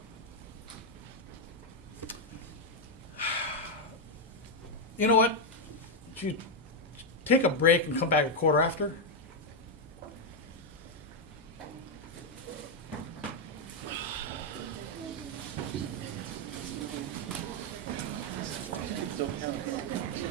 You know what? You take a break and come back a quarter after.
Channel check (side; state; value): both; normal; correlation 0.01